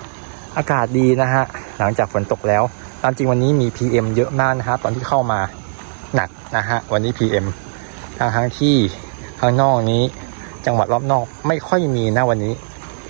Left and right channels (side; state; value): left; silent; digital silence